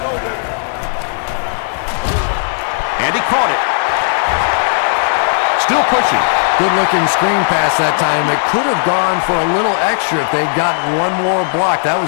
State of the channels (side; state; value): right; silent; digital silence